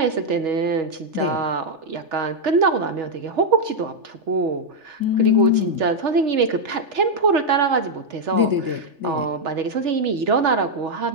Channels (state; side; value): late; left; 3.4 ms